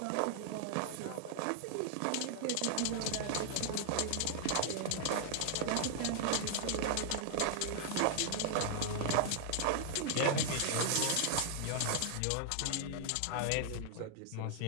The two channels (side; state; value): both; different; correlation 0.00